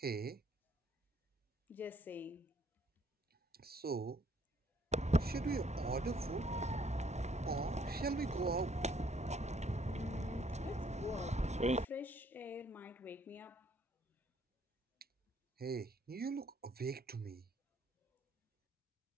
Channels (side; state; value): both; normal; correlation 0.65